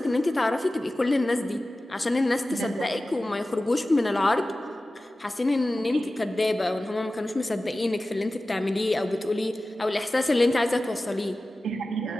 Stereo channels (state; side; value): normal; both; correlation 0.96